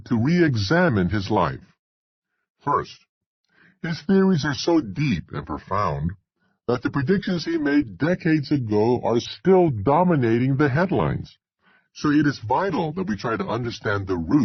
to re-examine his life. First, his theories are so deep and profound that the predictions he made decades ago are still dominating the headlines. So it is vital that we try to understand the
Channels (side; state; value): both; identical; correlation 1.00